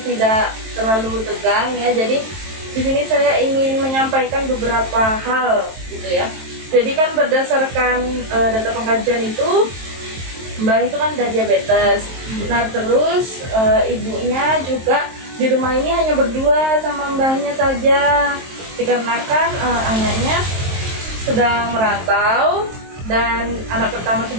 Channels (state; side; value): late; left; 23 ms